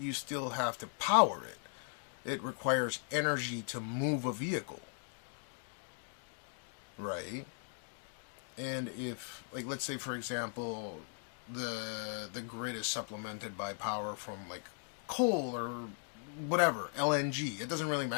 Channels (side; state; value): right; silent; 52 dB below the other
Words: still have to power it. It requires energy to move a vehicle, right? And if, like, let's say for example, the grid is supplemented by power from like coal or whatever, LNG, it doesn't really